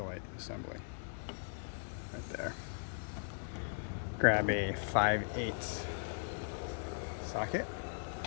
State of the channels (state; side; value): silent; right; digital silence